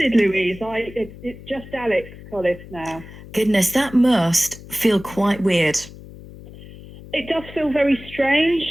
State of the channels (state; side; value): noise; left; hum, 17 dB below the sound